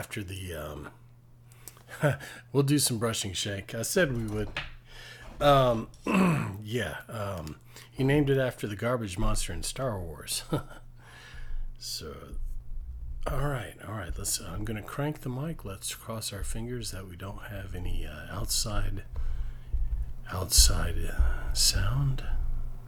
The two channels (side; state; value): both; identical; correlation 1.00